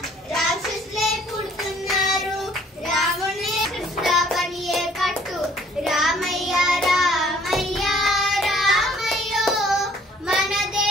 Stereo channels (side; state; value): both; normal; correlation 0.58